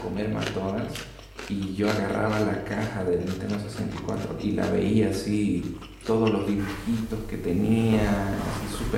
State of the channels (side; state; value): both; identical; correlation 1.00